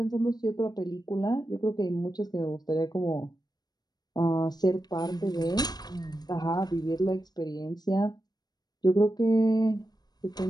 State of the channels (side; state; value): right; late; 0.19 ms